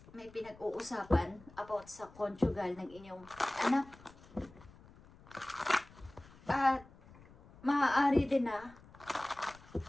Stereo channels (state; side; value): noise; left; rumble, 22 dB below the sound